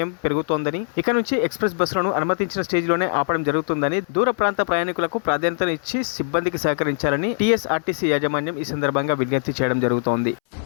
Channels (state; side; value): silent; right; 64 dB below the other